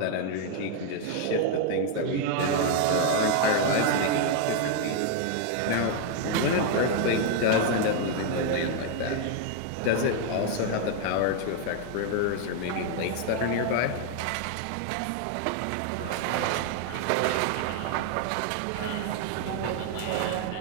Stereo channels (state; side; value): different; both; correlation 0.00